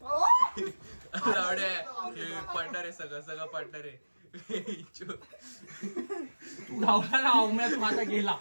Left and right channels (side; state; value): both; inverted; correlation -1.00